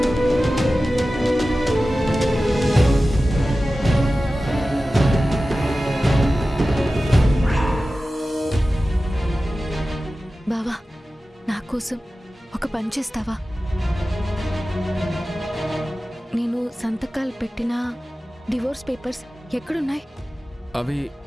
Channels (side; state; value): both; normal; correlation 0.95